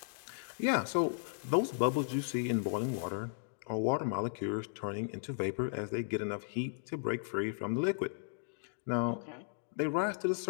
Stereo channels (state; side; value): silent; right; digital silence